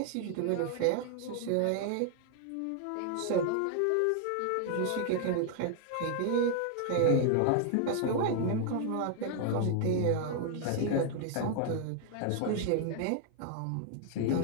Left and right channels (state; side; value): different; both; correlation 0.00